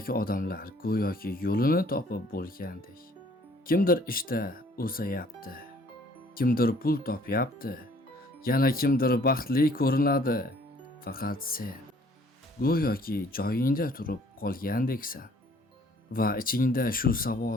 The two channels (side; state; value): both; normal; correlation 0.58